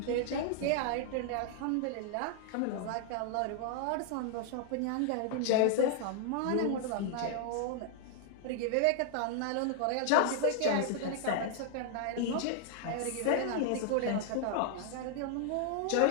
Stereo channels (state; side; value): different; both; correlation 0.00